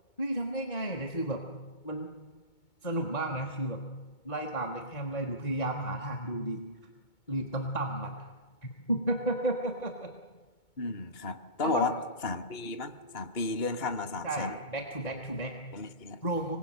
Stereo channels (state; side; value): late; right; 2.2 ms